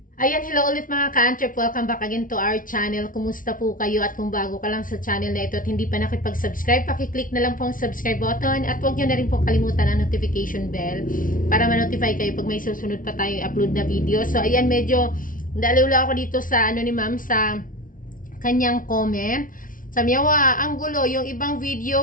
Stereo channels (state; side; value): late; right; 0.39 ms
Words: Ayan, hello ulit mga ka-Antrep. Welcome back again to our channel. Kumusta po kayo? At kung bago ka lang sa channel na ito at hindi pa nakipag-subscribe, pakiclick na lang po ang subscribe button at huwag nyo na rin po kalimutan ang notification bell para ma-notify kayo pag may susunod pa tayong upload na video. So, ayan, medyo daliwla ako dito sa ni ma'am sa kanyang comment. Sabi niya, ang gulo, yung ibang